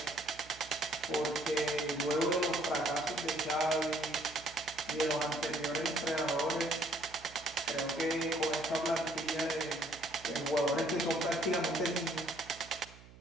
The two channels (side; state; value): right; noise; hum, 20 dB below the sound